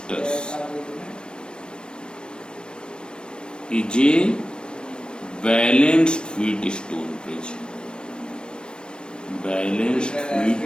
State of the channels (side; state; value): right; late; 0.053 ms